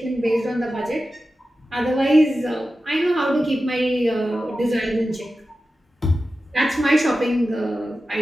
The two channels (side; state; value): both; normal; correlation 0.93